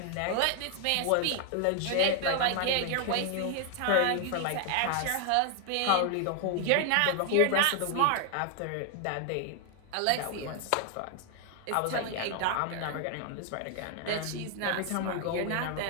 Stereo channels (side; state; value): both; different; correlation 0.00